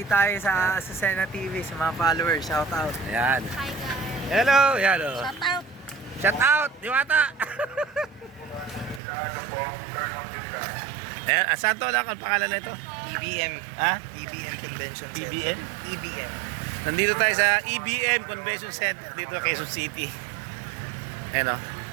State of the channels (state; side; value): drops out; left; at 9.0 s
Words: tayo sa Azucena TV, sa mga followers. Shout out. Ayan. Hi guys. Hello. Yan o. Shout out. Shout out. Diwata. Ayan. Saan to lang ang pangalan na ito? EBM. Ha? EBM Convention Center. EBM? EBM. Nandito tayo sa EBM Convention Center dito sa Quezon City. Ayan o.